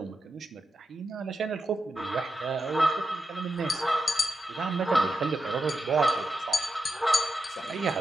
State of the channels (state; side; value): normal; both; correlation 0.88